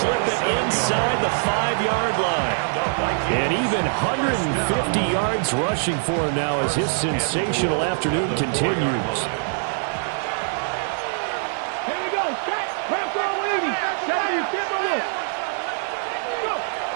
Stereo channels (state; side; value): silent; left; 56 dB below the other